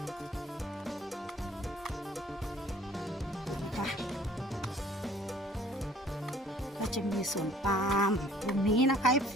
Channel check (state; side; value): normal; both; correlation 0.55